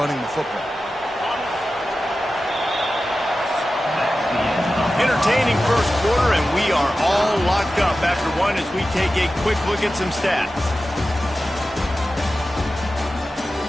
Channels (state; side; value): normal; both; correlation 0.94